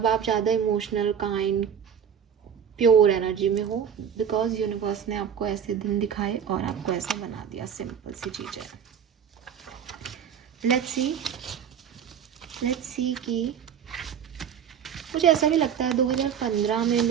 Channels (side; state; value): left; quieter; 8.1 dB